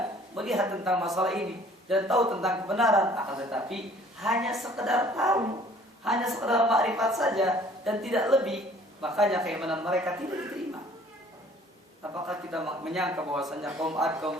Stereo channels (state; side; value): normal; both; correlation 0.54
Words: melihat tentang masalah ini dan tahu tentang kebenaran, akan tetapi hanya sekedar tahu, hanya sekedar makrifat saja dan tidak lebih. Makanya keimanan mereka tidak diterima. Apakah kita menyangka bahwasanya kaum 'Ad, kaum